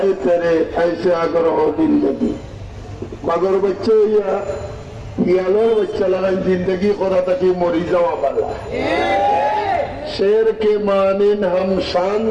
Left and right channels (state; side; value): identical; both; correlation 1.00